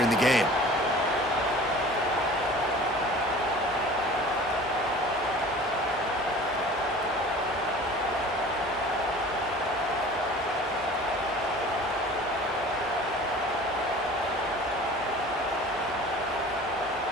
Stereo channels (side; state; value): both; normal; correlation 0.43